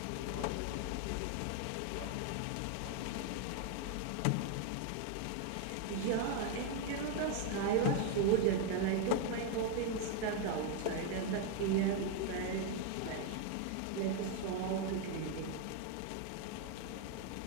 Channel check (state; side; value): different; both; correlation 0.00